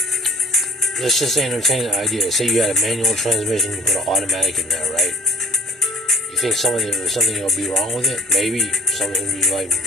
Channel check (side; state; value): both; normal; correlation 0.53